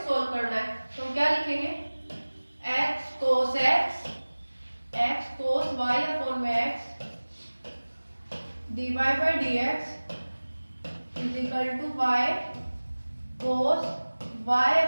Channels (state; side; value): inverted; both; correlation -1.00